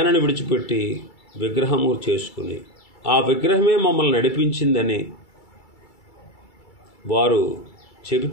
విడిచిపెట్టి విగ్రహము చేసుకుని ఆ విగ్రహమే మమ్మల్ని నడిపించిందని వారు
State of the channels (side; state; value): right; late; 2.3 ms